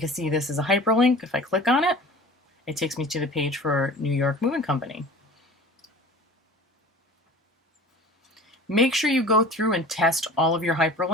see this is a hyperlink. If I click on it, it takes me to the page for New York Moving Company. Make sure you go through and test all of your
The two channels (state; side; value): normal; both; correlation 0.41